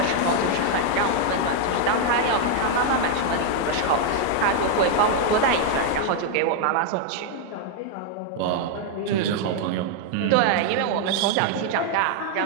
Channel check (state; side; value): different; both; correlation 0.00